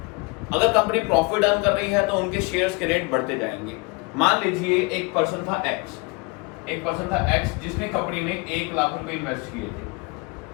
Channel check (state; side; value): quieter; right; 27.6 dB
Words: अगर कंपनी प्रॉफिट अर्न कर रही है तो उनके शेयर्स के रेट बढ़ते जाएंगे। मान लीजिए एक पर्सन था एक्स जिसने कंपनी में 1 लाख रुपए इन्वेस्ट